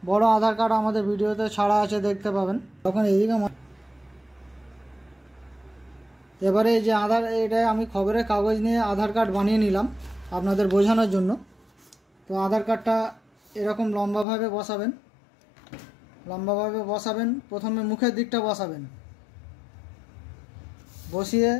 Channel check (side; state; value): right; drops out; at 14.2 s